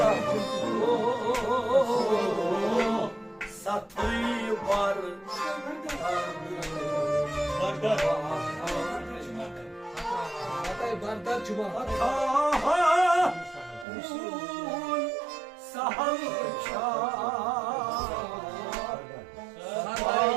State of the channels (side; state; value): left; drops out; at 13.9 s